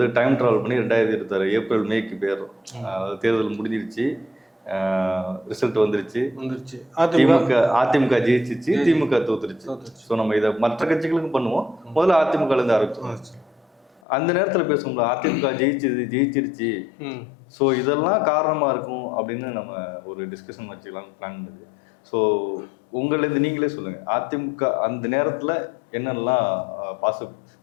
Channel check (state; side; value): drops out; right; at 14.0 s